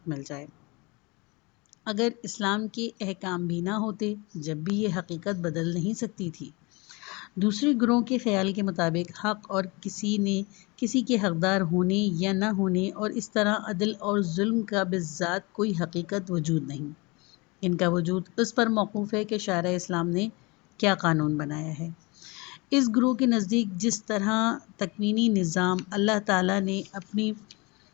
مل جائے۔ اگر اسلام کے احکام بھی نہ ہوتے جب بھی یہ حقیقت بدل نہیں سکتی تھی۔ دوسرے گروہ کے خیال کے مطابق حق اور کسی کے حقدار ہونے یا نہ ہونے اور اس طرح عدل اور ظلم کا بذات کوئی حقیقت وجود نہیں۔ ان کا وجود اس پر موقوف ہے کہ شارع اسلام نے کیا قانون بنایا ہے۔ اس گروہ کے نزدیک جس طرح تکوینی نظام اللہ تعالیٰ نے اپنی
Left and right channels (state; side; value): quieter; right; 26.7 dB